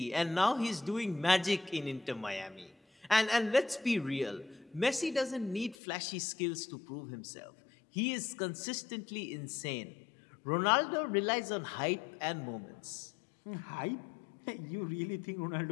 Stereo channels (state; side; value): drops out; right; at 5.8 s